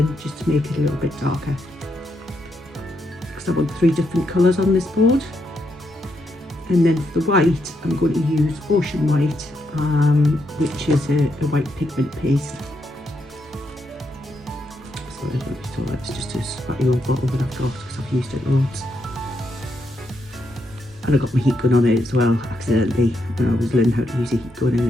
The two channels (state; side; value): normal; both; correlation 0.80